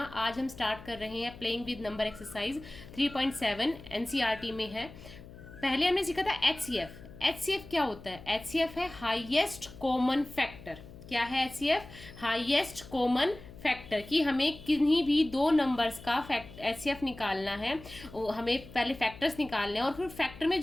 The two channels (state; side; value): noise; left; hum, 17 dB below the sound